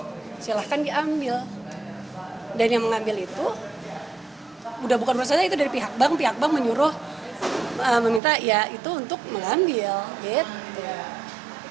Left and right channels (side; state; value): left; drops out; at 8.2 s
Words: Silahkan diambil. Dan yang mengambil itu udah bukan urusan saya, itu dari pihak bank menyuruh meminta ya itu untuk mengambil gitu.